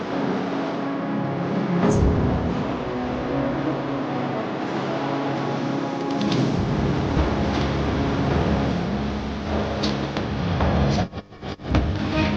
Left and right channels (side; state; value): both; identical; correlation 1.00